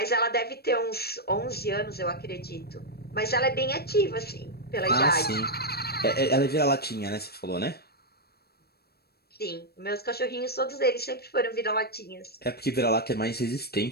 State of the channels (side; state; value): right; late; 0.46 ms